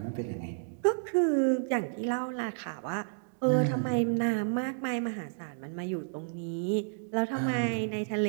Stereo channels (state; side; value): silent; left; digital silence